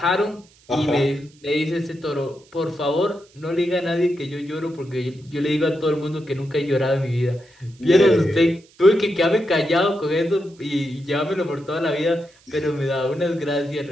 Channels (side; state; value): right; noise; hiss, 29 dB below the sound